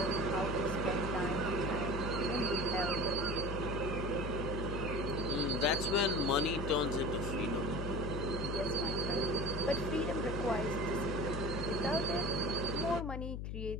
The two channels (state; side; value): noise; left; hum, 4 dB below the sound